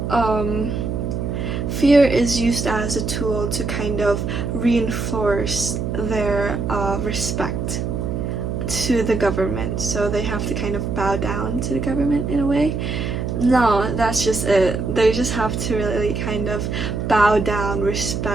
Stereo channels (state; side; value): noise; right; hum, 2 dB below the sound